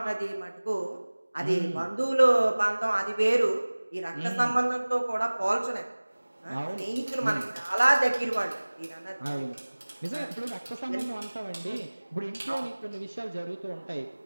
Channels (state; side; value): inverted; both; correlation -1.00